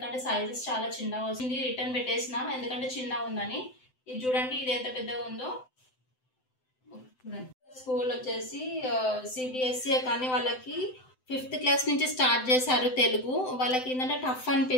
సైజెస్ చాలా చిన్నగా వచ్చింది. రిటర్న్ పెట్టేసిన ఎందుకంటే చిన్నగా ఉందని. ఇది చూడండి, ఇది ఎంత పెద్దగా ఉందో. స్కూల్ వచ్చేసి సిబిఎస్ఈ, కానీ వాళ్ళకి 5th క్లాస్ నుంచి స్టార్ట్ చేశారు తెలుగు. వాళ్ళకి ఏంటంటే టఫ్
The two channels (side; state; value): right; late; 7.8 ms